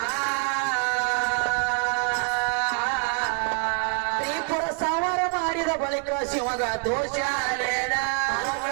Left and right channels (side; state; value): left; quieter; 36.5 dB